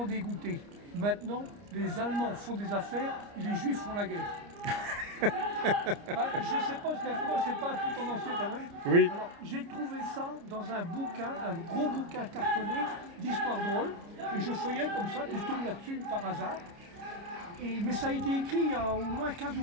dégoûté. Maintenant, les Allemands font des affaires et les Juifs font la guerre. Je ne sais pas, parce qu'avec moi, c'est pas un peu tendancieux quand même. Oui. Alors, j'ai trouvé ça dans un bouquin, un gros bouquin cartonné d'histoire drôle. Et je feuillette comme ça, puis je tombe là-dessus par hasard. Mais ça a été écrit il y a au moins 15 ou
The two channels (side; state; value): left; late; 29 ms